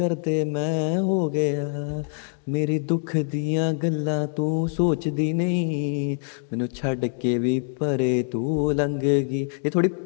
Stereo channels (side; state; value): right; silent; digital silence